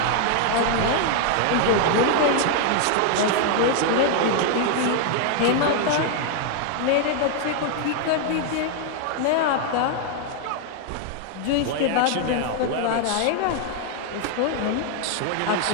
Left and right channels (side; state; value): both; different; correlation 0.00